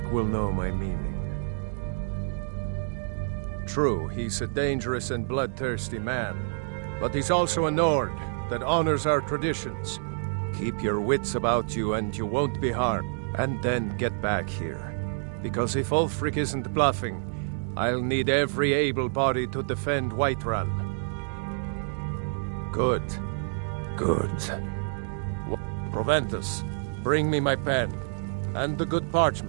will know my meaning. True, he's a dangerous and bloodthirsty man, but he's also a Nord that honors our traditions. Keep your wits about you and you won't be harmed. And then get back here. Because if Ulfric isn't bluffing, I'll need every able body to defend Whiterun. Good. Good. Proventus, bring me my pen. And the good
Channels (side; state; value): left; silent; digital silence